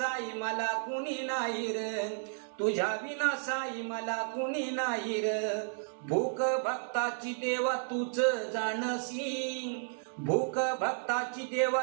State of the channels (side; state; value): left; silent; 56 dB below the other